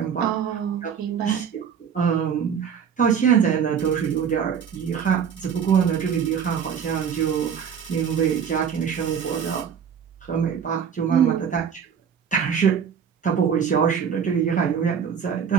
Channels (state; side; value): quieter; left; 7.5 dB